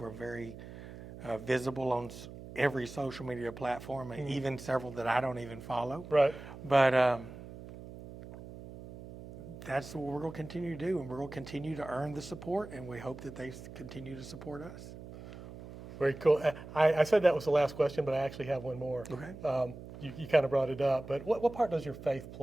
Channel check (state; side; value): noise; right; hum, 14 dB below the sound